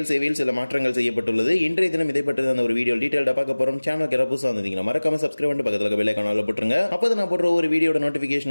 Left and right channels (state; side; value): inverted; both; correlation -1.00